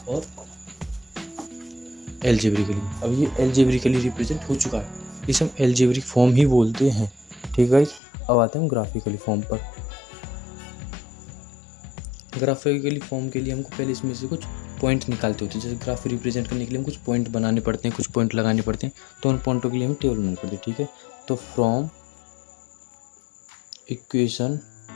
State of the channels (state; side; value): drops out; right; at 8.0 s